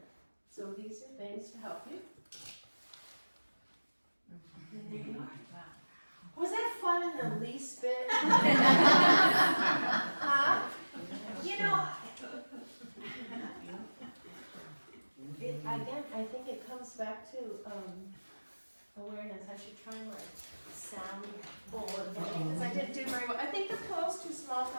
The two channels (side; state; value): both; inverted; correlation -1.00